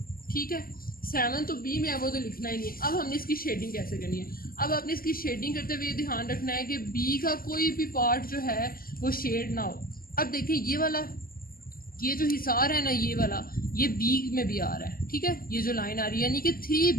ठीक है, 7 तो बी में है, वो तो लिखना ही नहीं है। अब हमने इसकी शेडिंग कैसे करनी है, अब आपने इसकी शेडिंग करते हुए ध्यान रखना है कि बी का कोई भी पार्ट जो है वो शेड ना हो। अब देखिए ये वाला, ये जो हिसार है ना, ये वाला, ये बी में भी आ रहा है। ठीक है, ये जो लाइन आ रही है यानी कि 3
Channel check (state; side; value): late; right; 0.42 ms